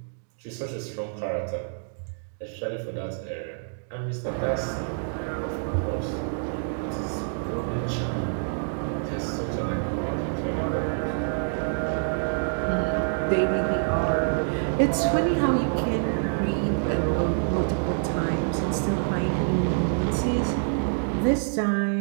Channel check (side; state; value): left; silent; digital silence